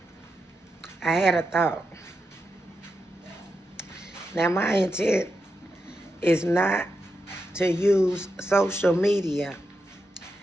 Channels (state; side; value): normal; both; correlation 0.87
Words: I had a thought. Now, my intent is not to use social media